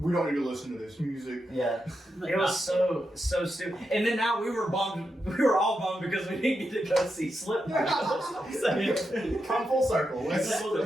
don't need to listen to this music. Yeah. It was so stupid. And then now we were bummed. We were all bummed because we didn't get to go see Slipknot. Come full circle.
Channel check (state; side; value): normal; both; correlation 0.86